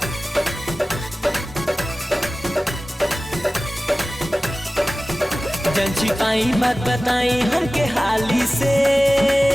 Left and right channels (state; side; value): normal; both; correlation 0.97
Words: जन छिपाई बात बताई हमके हाली से